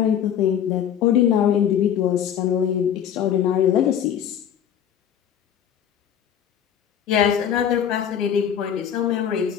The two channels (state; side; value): quieter; right; 9.2 dB